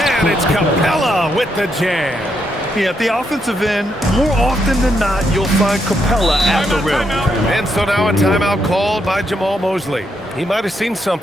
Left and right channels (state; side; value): normal; both; correlation 0.79